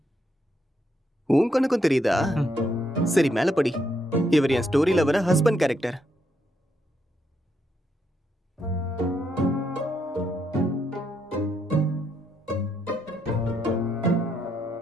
உன் கண்ணுக்கும் தெரியுதா? சரி, மேல படி. இவர் என் ஸ்டோரியில வர ஹஸ்பண்ட் கேரக்டர்.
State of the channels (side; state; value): both; normal; correlation 0.77